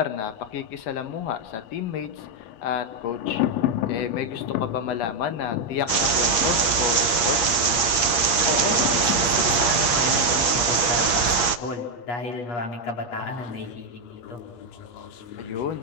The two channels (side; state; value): right; late; 8.4 ms